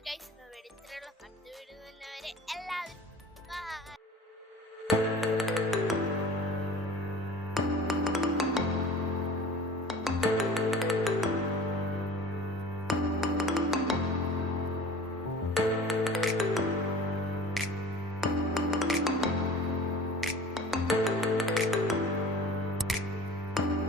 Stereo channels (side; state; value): both; normal; correlation 0.42